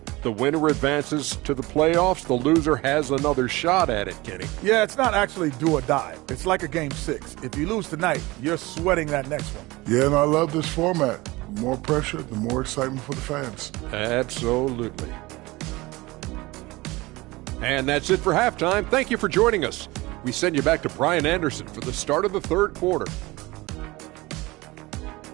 The winner advances to the playoffs. The loser has another shot at it, Kenny. Yeah, it's not actually do or die. It's like a game 6. If you lose tonight, you're sweating that next one. Yeah, and I love this format. The more pressure, the more excitement for the fans. Absolutely. And that's it for halftime. Thank you for joining us. We send you back to Brian Anderson for the start of the third quarter.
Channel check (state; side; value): quieter; left; 21.3 dB